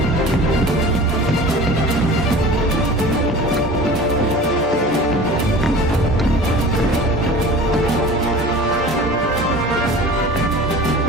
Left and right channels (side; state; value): both; normal; correlation 0.40